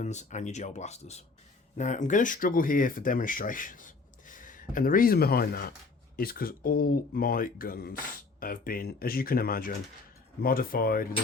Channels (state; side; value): quieter; right; 4.1 dB